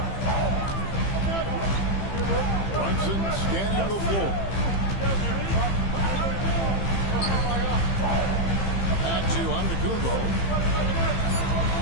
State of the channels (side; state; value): right; late; 15 ms